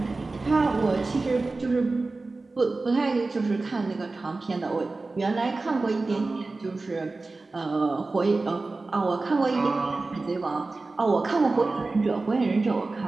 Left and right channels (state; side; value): quieter; left; 3.5 dB